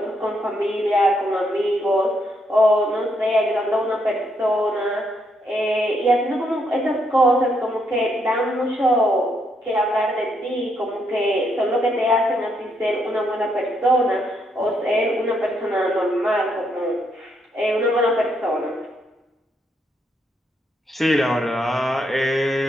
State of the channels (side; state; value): both; normal; correlation 0.76